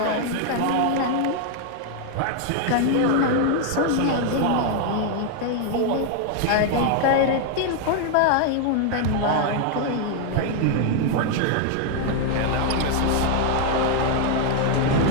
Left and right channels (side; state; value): both; different; correlation 0.00